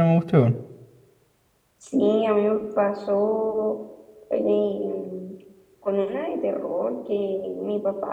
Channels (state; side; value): identical; both; correlation 1.00